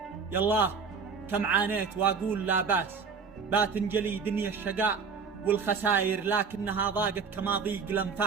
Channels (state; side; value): quieter; left; 5.5 dB